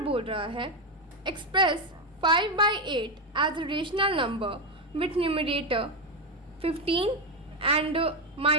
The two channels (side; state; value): both; normal; correlation 0.08